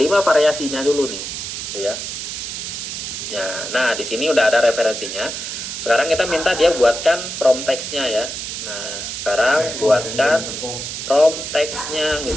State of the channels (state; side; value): noise; right; hiss, 6 dB below the sound